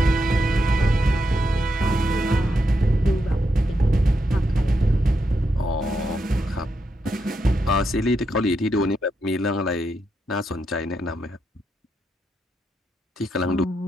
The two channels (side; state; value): both; normal; correlation 0.83